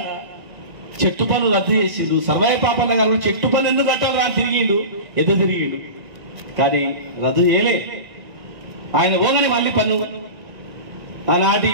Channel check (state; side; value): late; left; 1.9 ms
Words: చెట్టు పన్ను రద్దు చేసిండు. సర్వాయి పాపన్న గారు చెట్టు పన్ను ఎందుకు కట్టాలి అని తిరిగిండు, ఎదురు తిరిగిండు, కానీ రద్దు చేయలే. ఆయన పోగానే మళ్ళీ పన్ను, ఆనాటి